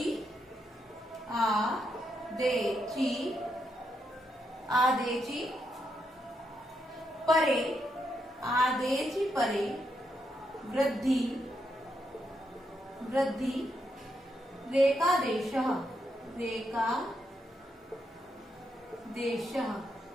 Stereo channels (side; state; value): both; normal; correlation 0.80